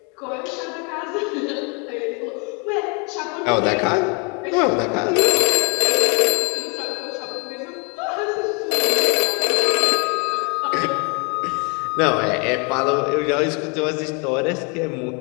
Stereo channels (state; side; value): quieter; right; 33.7 dB